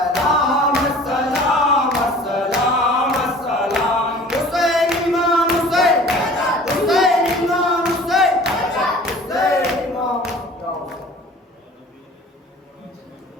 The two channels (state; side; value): normal; both; correlation 0.46